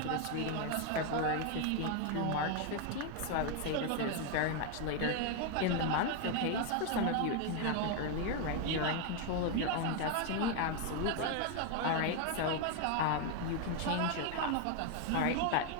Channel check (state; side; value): different; both; correlation 0.01